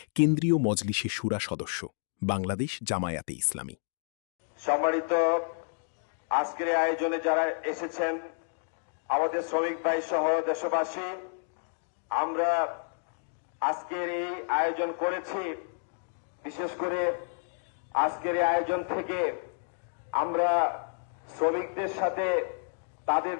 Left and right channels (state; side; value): silent; right; digital silence